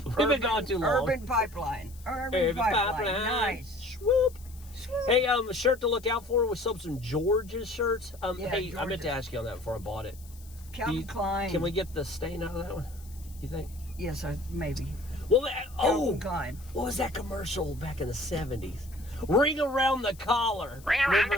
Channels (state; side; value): noise; left; hiss, 23 dB below the sound